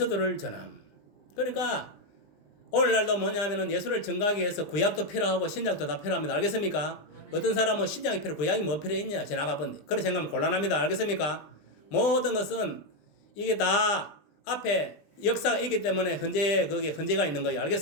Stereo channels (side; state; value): right; late; 20 ms